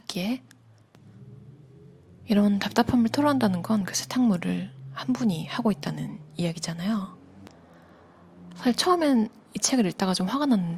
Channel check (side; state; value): both; identical; correlation 1.00